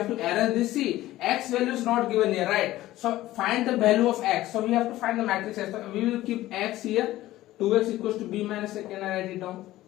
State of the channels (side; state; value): right; quieter; 15.7 dB